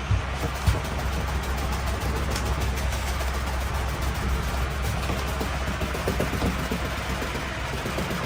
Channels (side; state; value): both; identical; correlation 1.00